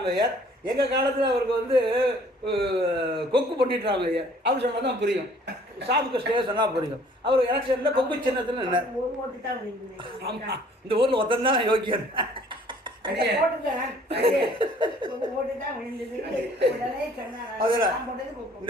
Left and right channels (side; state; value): both; normal; correlation 0.56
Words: எங்கள் காலத்தில் அவருக்கு வந்து கொக்கு பண்டிட் ராமையர். அவர் சொன்னால் தான் புரியும், ஷாப்புக்கு ஸ்டே சொன்னால் புரியும். அவர் எலெக்ஷனில் கொக்கு சின்னத்தில் நின்னார். ஆமாம், இந்த ஊரில் ஒருத்தன் தான் யோக்கியன்.